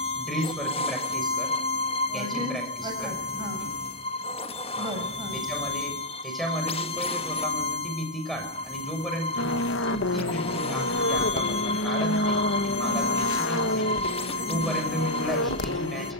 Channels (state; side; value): normal; both; correlation -0.04